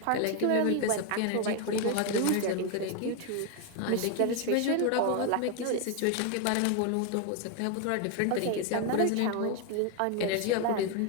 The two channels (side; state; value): both; different; correlation 0.01